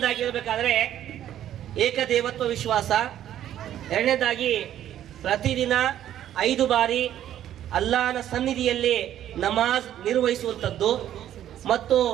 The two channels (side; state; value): left; quieter; 11.5 dB